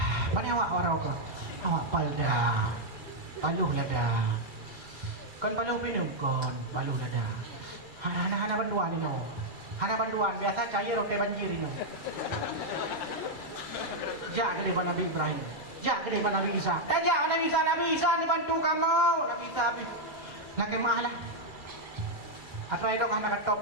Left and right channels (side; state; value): right; late; 2.3 ms